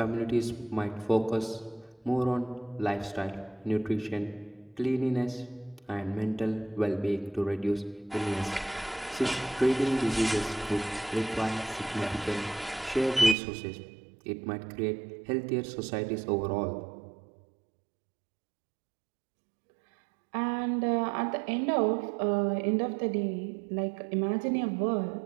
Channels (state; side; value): drops out; left; at 13.4 s